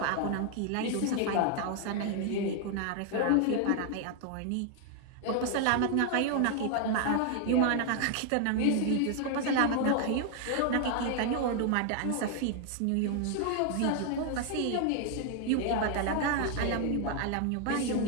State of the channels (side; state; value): both; different; correlation 0.00